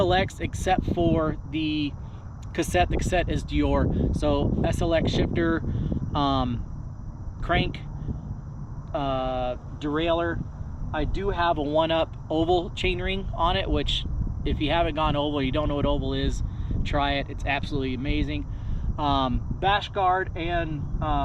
except for the cassette. The cassette is Dior. So SLX shifter, crank, derailleur. I do have a 1-up oval chainring on it, which if you haven't gone oval, you don't know what oval is, try it. It's absolutely amazing. Bash guard and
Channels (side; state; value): both; identical; correlation 1.00